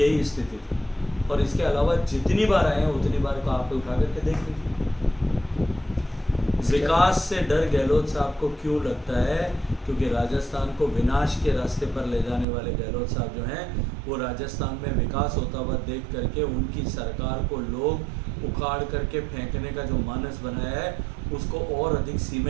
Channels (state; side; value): drops out; left; at 12.5 s